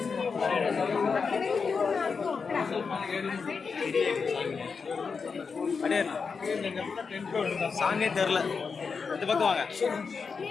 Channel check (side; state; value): right; quieter; 5.3 dB